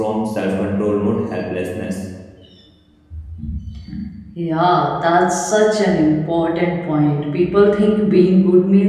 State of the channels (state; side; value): identical; both; correlation 1.00